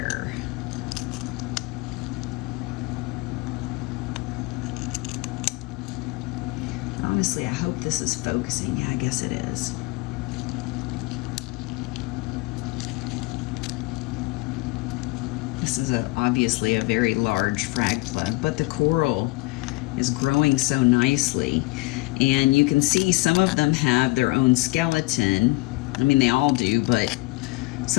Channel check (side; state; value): right; quieter; 23.1 dB